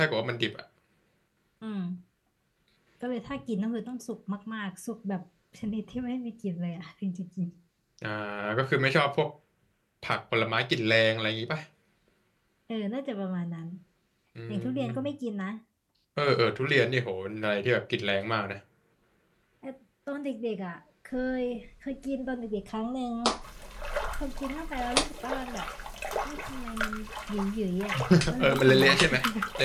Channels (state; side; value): identical; both; correlation 1.00